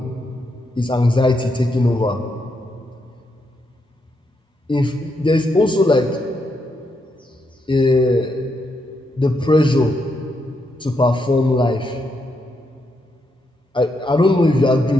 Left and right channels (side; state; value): both; normal; correlation 0.80